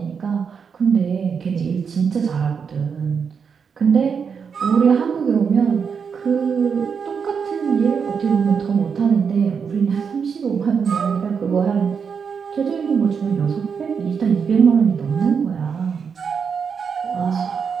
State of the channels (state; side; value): quieter; left; 6.3 dB